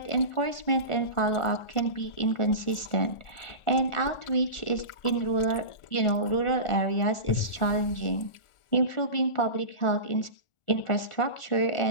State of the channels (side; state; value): right; late; 1.4 ms